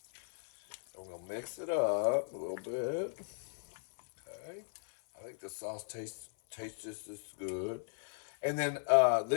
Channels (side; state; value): right; silent; 53 dB below the other